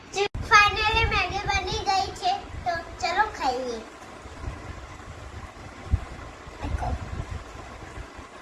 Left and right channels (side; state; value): both; identical; correlation 1.00